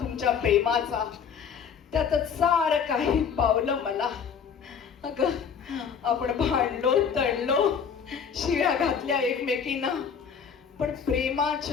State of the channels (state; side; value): quieter; right; 6.9 dB